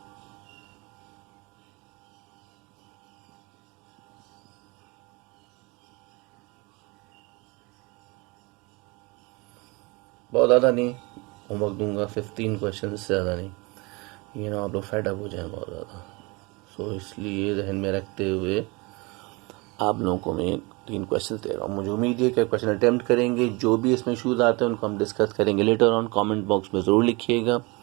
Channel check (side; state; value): left; quieter; 26.4 dB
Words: बहुत ज़्यादा नहीं होमवर्क दूंगा, 15 क्वेश्चन से ज़्यादा नहीं, ये ना आप लोग फेड अप हो जाए बहुत ज़्यादा। सो इसलिए जहन में रखते हुए आप लोगों को मैं 3 क्वेश्चन दे रहा हूँ। मुझे उम्मीद है कि क्वेश्चन अटेम्प्ट करेंगे। जो भी इसमें इशूज़ आते हैं उनको हम डिस्कस करेंगे लेटर ऑन। कमेंट बॉक्स में ज़रूर लिखिएगा,